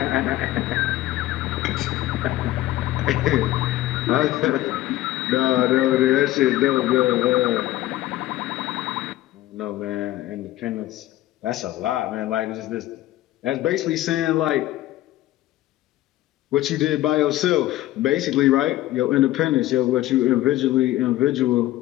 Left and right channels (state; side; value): quieter; right; 15.3 dB